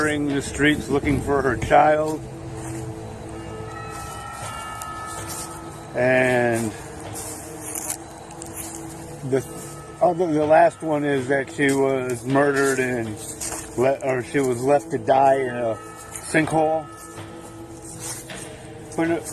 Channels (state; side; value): identical; both; correlation 1.00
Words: the streets looking for her child. And the last one is that she was murdered and she was left to die in a sinkhole. But